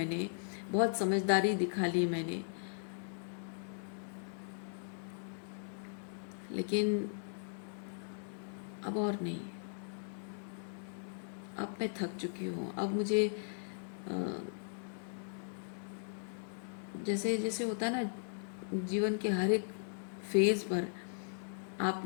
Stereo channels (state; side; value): silent; right; digital silence